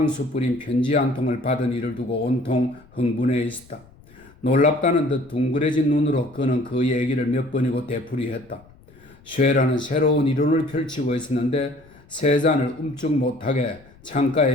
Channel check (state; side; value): noise; left; rumble, 26 dB below the sound